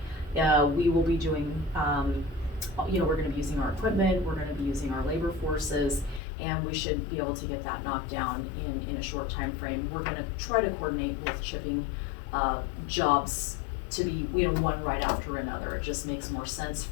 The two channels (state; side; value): drops out; right; at 6.2 s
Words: We will be doing, we're gonna be using our equipment, we're gonna be using our labor forces, and we should be able to get that knocked down in a short time frame. We're gonna try to coordinate both chipping jobs to be, one right after another. It just makes more sense